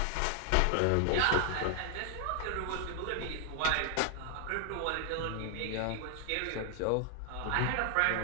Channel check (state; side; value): different; both; correlation 0.00